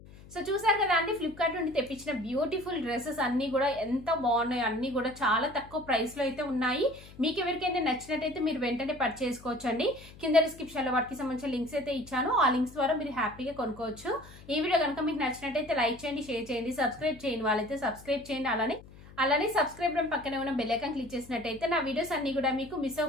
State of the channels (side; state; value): left; noise; hum, 20 dB below the sound